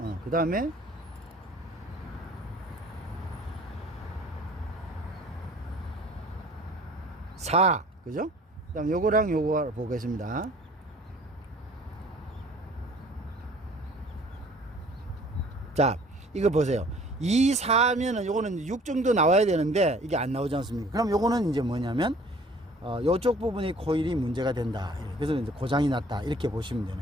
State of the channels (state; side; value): normal; both; correlation 0.52